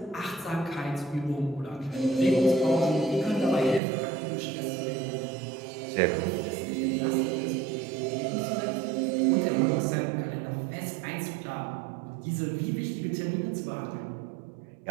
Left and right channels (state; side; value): drops out; left; at 3.8 s